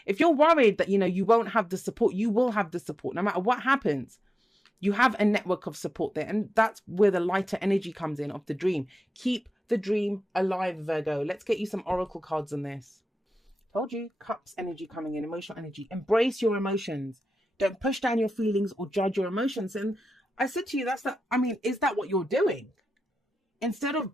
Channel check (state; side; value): normal; both; correlation 0.92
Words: If you're worried that, you won't have the support, you will have the support no matter what happens. You have a network of support there. And that's where the lighter energy comes in of the dream. Keep the dream alive, Virgo. Let's get you some oracle cards on this. Told you, Cups energy coming in, emotional energy. Embrace your emotions. Don't push down your feelings or judge your emotions. And I said to you, is that what you're doing? Instead of